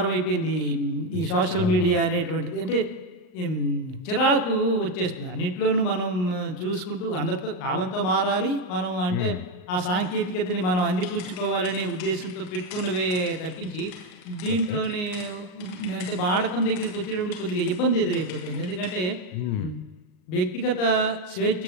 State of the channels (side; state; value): right; late; 39 ms